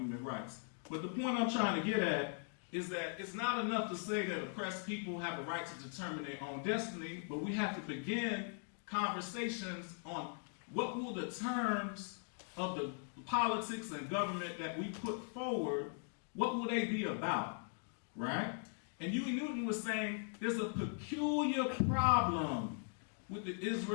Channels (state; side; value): silent; right; 51 dB below the other